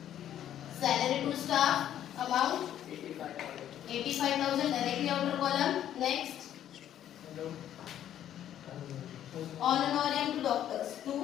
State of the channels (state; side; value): quieter; right; 11.0 dB